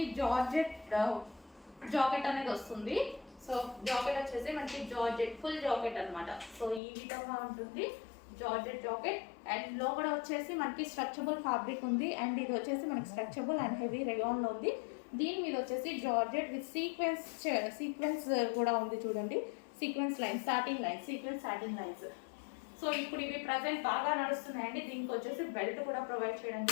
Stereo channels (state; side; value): drops out; right; at 6.8 s